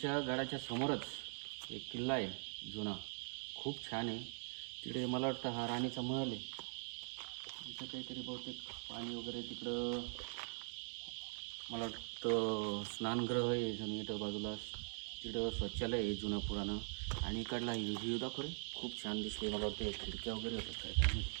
गडाच्या समोरच एक किल्ला आहे जुना, खूप छान आहे. तिकडे मला वाटतं हा राणीचा महल आहे. इथं काहीतरी बहुतेक पाणी वगैरे तिकडं मला वाटतं स्नानगृह आहे जणू इथं बाजूला. तिकडं शौचालय आहे जुनं पुराणं. आणि इकडला व्ह्यू दाखव रे, खूप छान दिसते. मला वाटतं खिडक्या वगैरे होतात काय काय माहिती.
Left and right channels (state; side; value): silent; left; digital silence